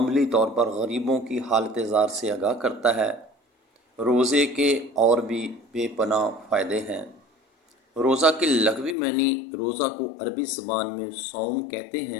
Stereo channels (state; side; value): drops out; right; at 9.0 s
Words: طور پر غریبوں کی حالت زار سے آگاہ کرتا ہے۔ روزے کے اور بھی بے پناہ فائدے ہیں۔ روزہ کے لغوی معنی روزہ کو عربی زبان میں صوم کہتے